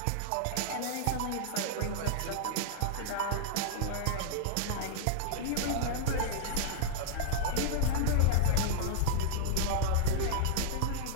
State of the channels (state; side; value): different; both; correlation -0.01